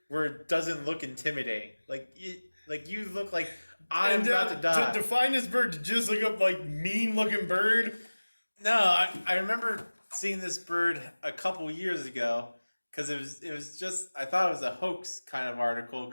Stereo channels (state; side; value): inverted; both; correlation -1.00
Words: where it doesn't look intimidating. Like you look like I'm about to die. To define this bird, to just look up like mean looking bird. No, I remember seeing this bird a couple years ago because it was just I thought it was a hoax kind of article